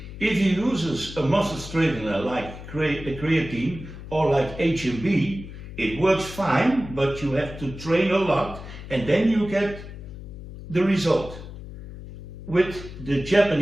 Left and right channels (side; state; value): left; noise; hum, 13 dB below the sound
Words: If you use a muscle straightener like creatine or like HMB, it works fine, but you have to train a lot and then you get the result. With the